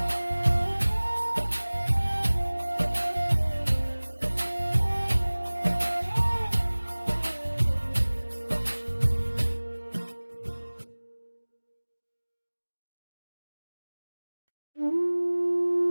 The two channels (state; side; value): inverted; both; correlation -1.00